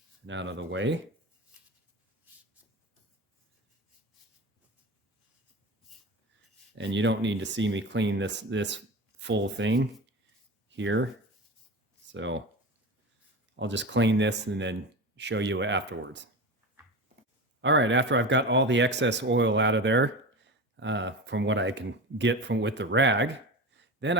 and out of the way. And you don't need to see me clean this full thing here. So I'll just clean this and then show you afterwards. All right, after I've got all the excess oil out of there, from what I can get with the rag, then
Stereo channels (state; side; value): normal; both; correlation 0.27